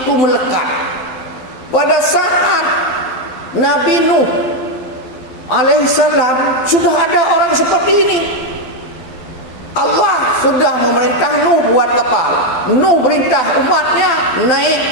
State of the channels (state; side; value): late; right; 12 ms